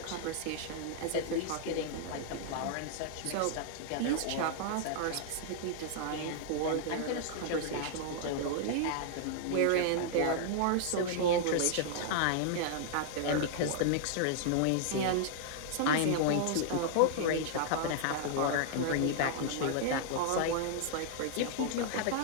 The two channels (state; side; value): different; both; correlation -0.01